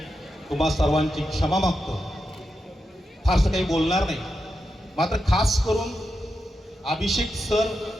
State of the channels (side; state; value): both; normal; correlation 0.88